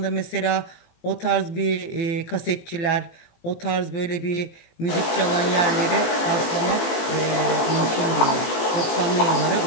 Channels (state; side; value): late; right; 18 ms